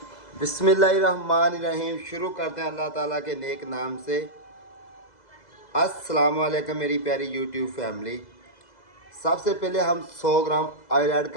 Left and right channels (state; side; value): late; right; 2.0 ms